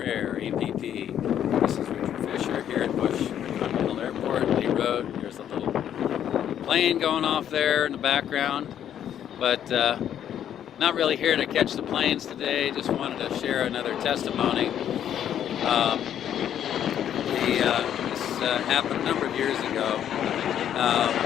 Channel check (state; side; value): quieter; right; 10.0 dB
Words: APP. This is Richard Fisher here at Bush Continental Airport, Lee Road. There's a little plane going off there in the background, but not really here to catch the planes today. Just wanted to share another testimony. This happened a number of years ago,